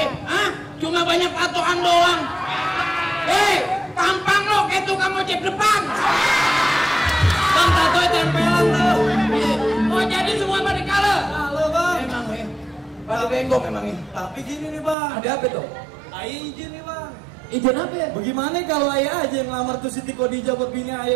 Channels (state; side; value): drops out; left; at 15.0 s